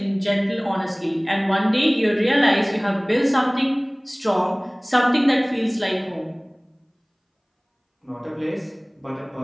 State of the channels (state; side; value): identical; both; correlation 1.00